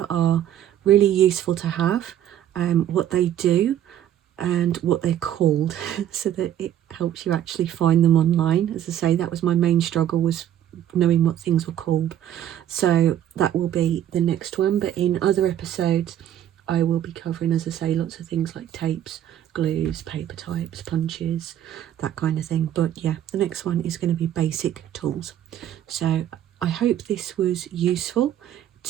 are really useful to have, what they do and what they're called, so that it helps you actually find them online. As I say, that was my main struggle, was knowing what things were called. So that will be the next one, but in other episodes I will be covering, as I say, lots of things like tapes, glues, paper types, punches, that kind of thing. But yeah, the next one is going to be basic tools. So I hope this was useful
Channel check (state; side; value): quieter; left; 11.1 dB